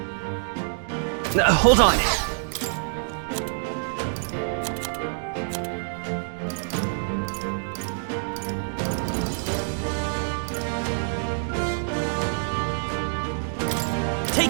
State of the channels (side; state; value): left; silent; digital silence